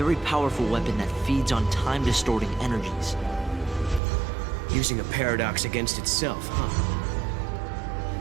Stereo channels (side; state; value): left; drops out; at 4.0 s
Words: powerful weapon that feeds on time-distorting energies. Using a paradox against itself, huh?